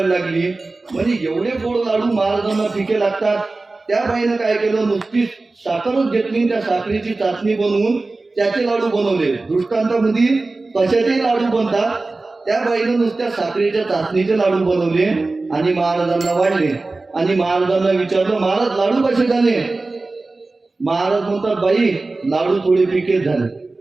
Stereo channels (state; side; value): quieter; left; 3.4 dB